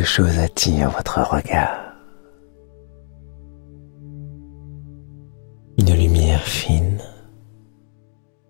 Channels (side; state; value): right; silent; digital silence